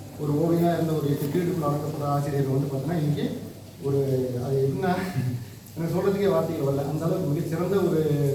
ஒரு ஓவியனாக இருந்த ஒரு 8 பீரியடுக்குள்ள அடக்கப்பட்ட ஆசிரியர் வந்து பார்த்தீங்கன்னா இன்றைக்கி ஒரு அது எப்படின்னா எனக்கு சொல்கிறதுக்கே வார்த்தைகள் வரல. அந்த அளவுக்கு மிகச்சிறந்த ஒரு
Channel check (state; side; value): identical; both; correlation 1.00